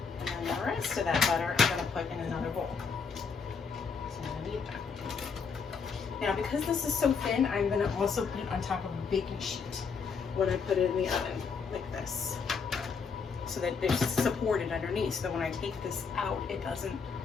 And then the rest of that butter I'm going to put in another bowl. So I'm going to need that. Now, because this is so thin, I'm going to also put it on top of a baking sheet when I put it in the oven, like this, so that it's supported underneath, so that when I take this out, it doesn't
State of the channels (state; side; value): quieter; right; 5.6 dB